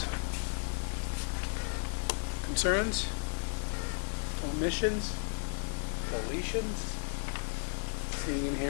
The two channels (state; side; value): silent; right; digital silence